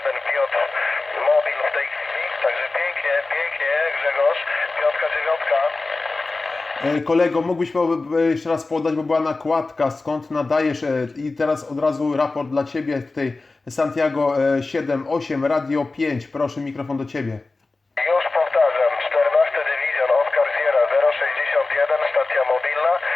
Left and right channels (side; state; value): right; quieter; 3.5 dB